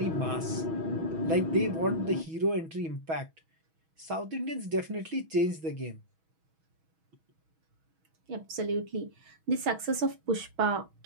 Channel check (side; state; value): left; late; 6.2 ms